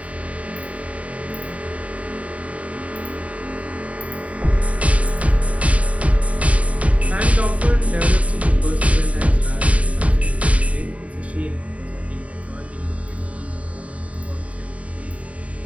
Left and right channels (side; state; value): left; late; 0.067 ms